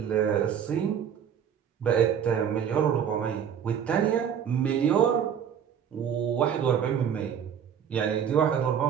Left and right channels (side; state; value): left; quieter; 8.4 dB